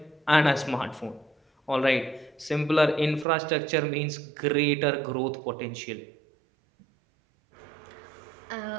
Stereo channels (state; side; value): drops out; left; at 3.2 s